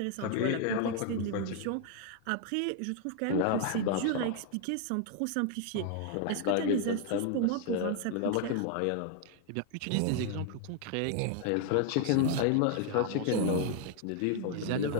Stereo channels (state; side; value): different; both; correlation 0.00